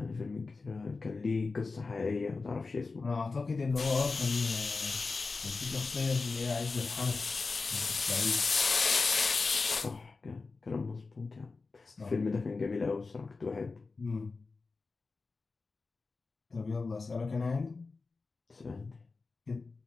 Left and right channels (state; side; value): quieter; right; 4.1 dB